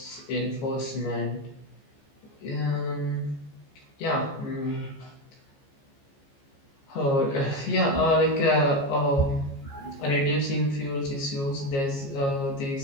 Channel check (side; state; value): right; late; 15 ms